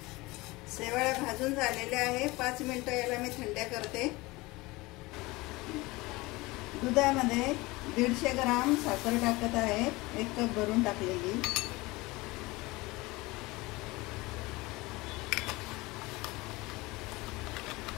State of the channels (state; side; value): quieter; right; 22.0 dB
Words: शेवळ्या भाजून झालेल्या आहे, 5 मिनिटं याला मी थंड्या करते। दुधामध्ये 150 ग्राम साखर टाकत आहे, 1 कप भरून टाकलेली।